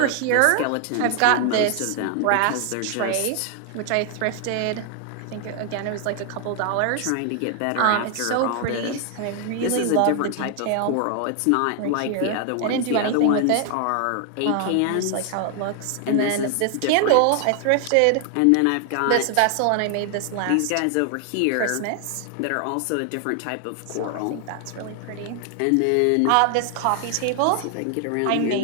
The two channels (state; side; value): different; both; correlation 0.00